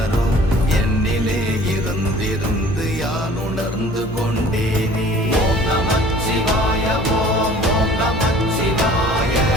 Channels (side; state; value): both; normal; correlation 0.49